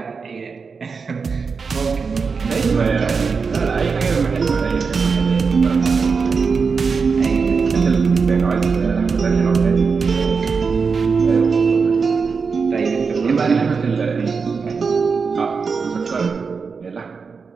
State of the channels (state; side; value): quieter; left; 5.2 dB